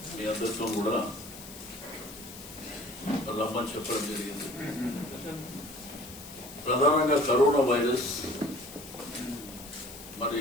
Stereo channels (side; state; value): left; noise; hiss, 15 dB below the sound